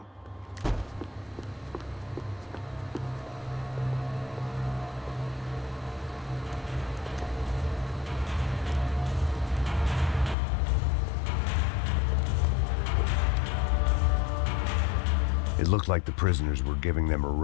It looked like the prisoners were giving them a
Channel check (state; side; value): drops out; right; at 10.4 s